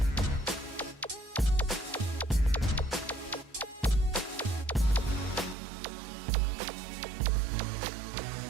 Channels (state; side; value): drops out; left; at 5.6 s